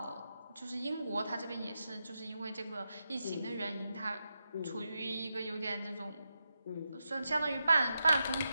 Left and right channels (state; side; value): inverted; both; correlation -0.87